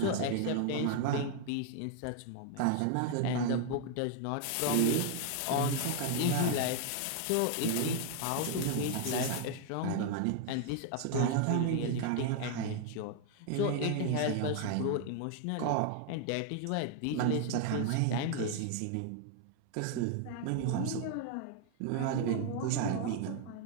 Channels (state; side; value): different; both; correlation 0.00